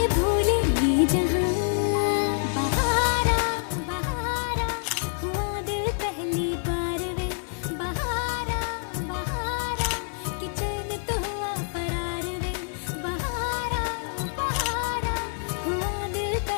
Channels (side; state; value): right; silent; 60 dB below the other